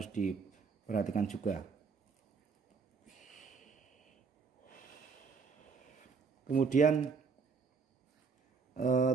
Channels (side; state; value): left; quieter; 5.2 dB